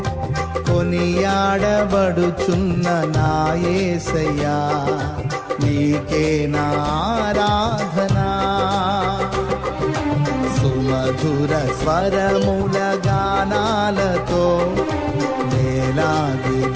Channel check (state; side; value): identical; both; correlation 1.00